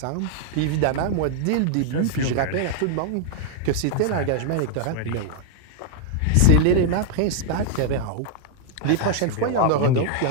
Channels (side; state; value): both; different; correlation 0.00